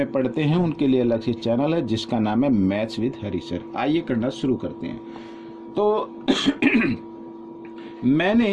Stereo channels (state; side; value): identical; both; correlation 1.00